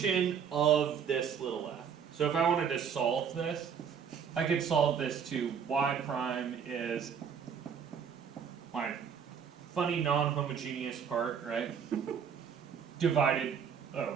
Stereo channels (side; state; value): left; quieter; 7.3 dB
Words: of this little f. So if I wanted to solve this, I could solve this to y prime is my funny non-homogeneous part, right? Divided, oh